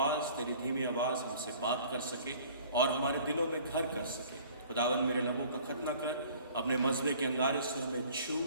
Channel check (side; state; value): both; inverted; correlation -0.51